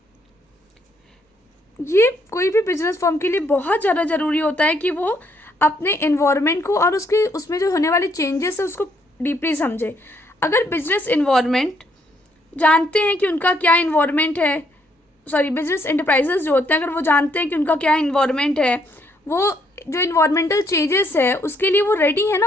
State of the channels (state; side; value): normal; both; correlation 0.71